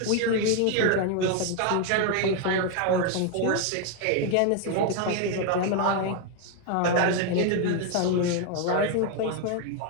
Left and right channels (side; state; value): both; different; correlation 0.01